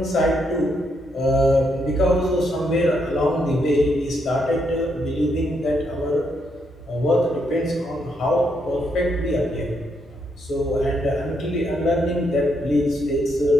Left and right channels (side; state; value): both; normal; correlation 0.77